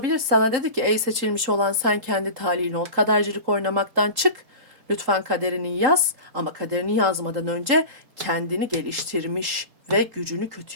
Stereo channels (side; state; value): left; late; 3.8 ms